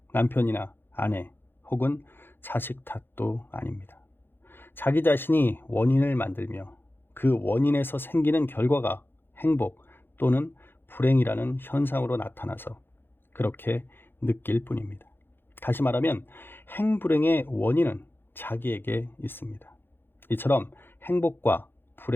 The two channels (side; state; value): right; late; 0.10 ms